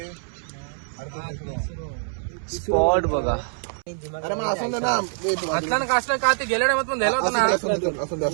स्पॉट बघा. अरे मग असं ना असला कासला का ते गेल्या टायमात पण द्यायला होता ना.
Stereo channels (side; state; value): left; silent; 61 dB below the other